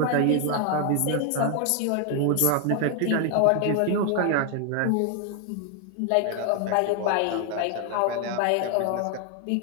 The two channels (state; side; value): different; both; correlation 0.00